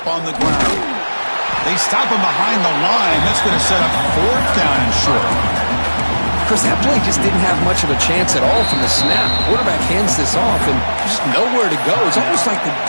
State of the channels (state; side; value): inverted; both; correlation -1.00